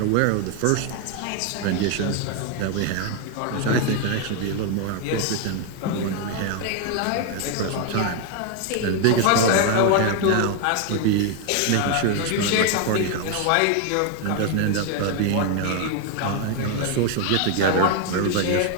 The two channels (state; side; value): different; both; correlation 0.01